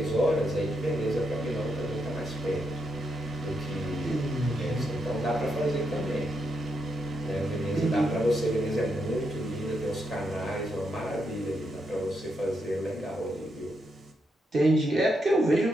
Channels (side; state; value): both; normal; correlation 0.81